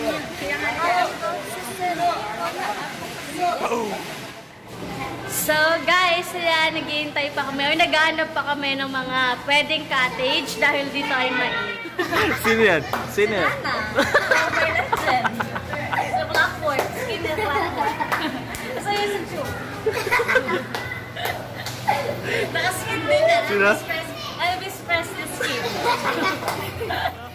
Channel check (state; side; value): identical; both; correlation 1.00